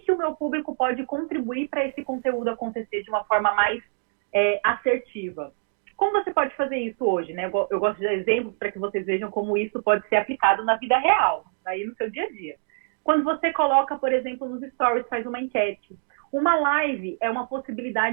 o meu público pode contribuir para esse conteúdo acontecer de uma forma mais assertiva. Como você pode fazer isso hoje, né? Eu gosto de dar exemplos para que vocês vejam como isso pode ser aplicado na vida real, aí no seu dia a dia. Quando você coloca, por exemplo, nos stories, faz uma enquete. Uma live é uma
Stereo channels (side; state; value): left; silent; digital silence